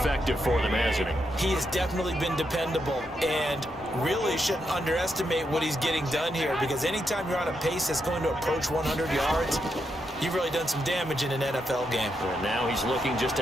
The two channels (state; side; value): normal; both; correlation 0.82